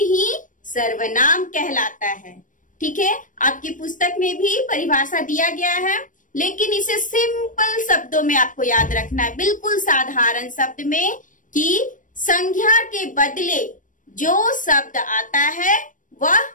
सर्वनाम कहलाता है। ठीक है, आपकी पुस्तक में भी परिभाषा दिया गया है, लेकिन इसे सिंपल शब्दों में आपको याद रखना है, बिल्कुल साधारण शब्द में, कि संज्ञा के बदले जो शब्द आता है वह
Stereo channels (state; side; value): late; right; 0.38 ms